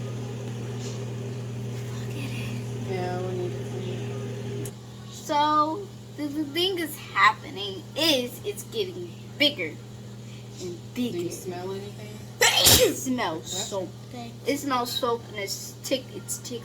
Yeah, we need to clean it. So the thing is happening is it's getting bigger and bigger. Do you smell anything? It smells soap. It smells soap and it's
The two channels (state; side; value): identical; both; correlation 1.00